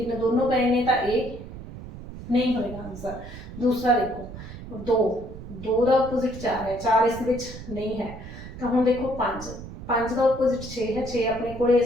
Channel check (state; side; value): noise; right; rumble, 12 dB below the sound